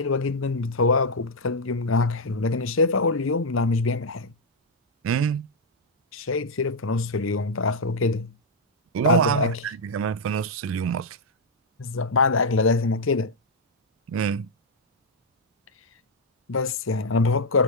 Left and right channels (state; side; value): normal; both; correlation -0.02